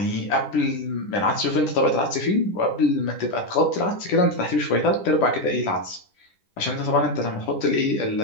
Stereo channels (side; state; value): right; late; 10 ms